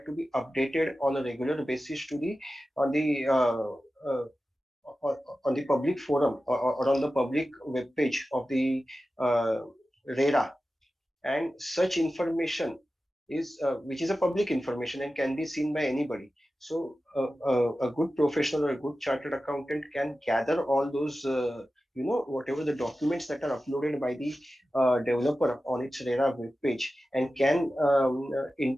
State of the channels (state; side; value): normal; both; correlation 0.94